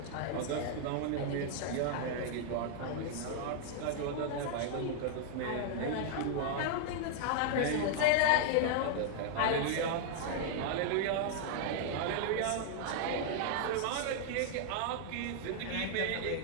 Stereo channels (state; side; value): different; both; correlation 0.00